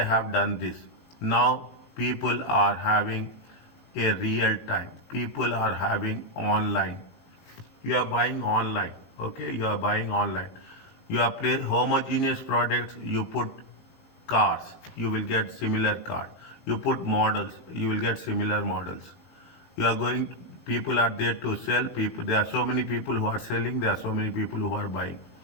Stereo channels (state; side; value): late; right; 18 ms